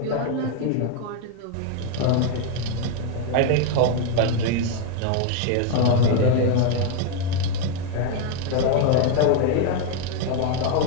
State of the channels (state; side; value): different; both; correlation 0.01